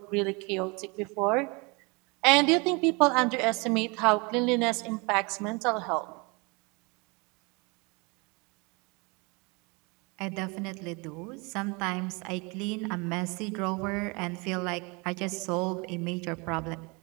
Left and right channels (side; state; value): left; quieter; 28.8 dB